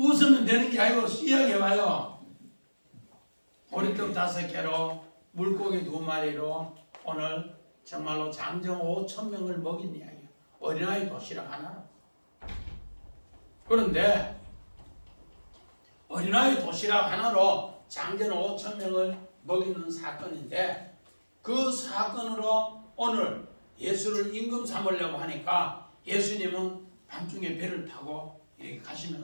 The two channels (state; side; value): inverted; both; correlation -1.00